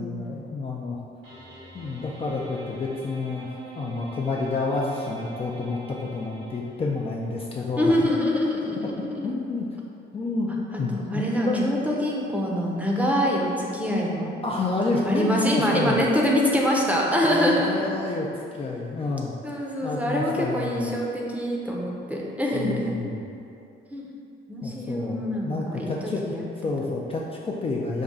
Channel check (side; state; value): both; normal; correlation 0.62